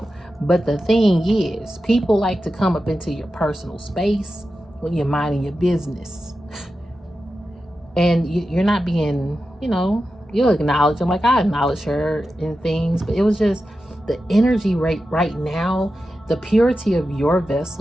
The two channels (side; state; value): both; normal; correlation 0.91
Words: But the thing is, people like to come up into your personal space when you're minding your business. And you're not being, you know, you'll acknowledge them. Like I acknowledge her and things, but it was just the energy right now, the purity of your